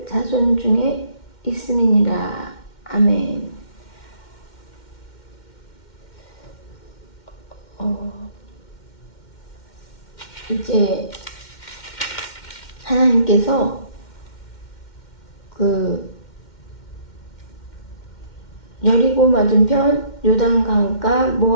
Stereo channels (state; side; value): late; right; 2.1 ms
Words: 자손 중에 있음이니라. 아멘. 이제 하나님께서 여리고 맞은편 요단강가